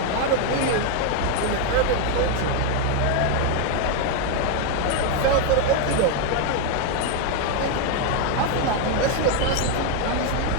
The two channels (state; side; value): different; both; correlation 0.01